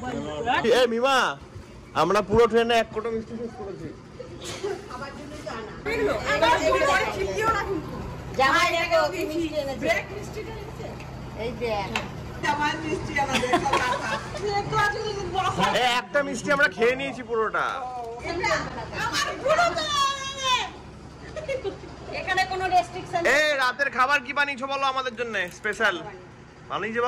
এ মিমা, আমরা পুরো ট্রেনে এক কোটো মিষ্টি শেষ করেছি। একটা মিষ্টি আমরা খেয়ে নিয়েছি পুরোটা। এই রাতের খাবার কি বানিয়েছো বলো আমাদের জন্য স্পেশাল? বানিয়েছে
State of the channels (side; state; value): both; identical; correlation 1.00